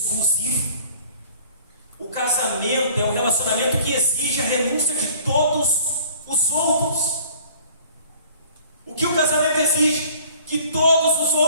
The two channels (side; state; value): both; inverted; correlation -0.52